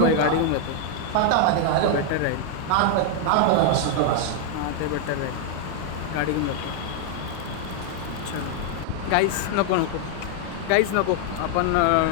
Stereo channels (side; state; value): both; different; correlation 0.00